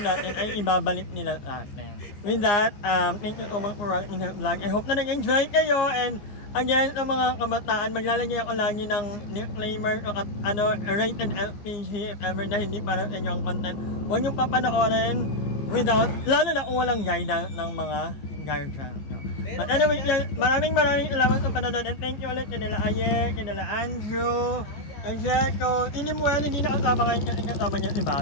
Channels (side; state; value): right; late; 15 ms